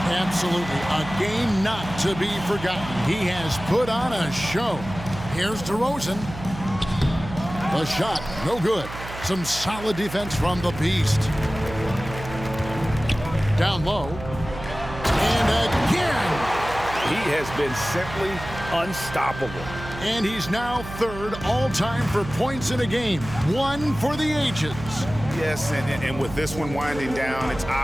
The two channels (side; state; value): right; noise; hum, 11 dB below the sound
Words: Absolutely. A game not to be forgotten. He has put on a show. Here's DeRozan. The shot, no good. Some solid defense from the Beast. Down low. And again. He has been simply unstoppable. And he's now 3rd all-time for points in a game. 1 for the ages. Yes, and with this one winding down, it's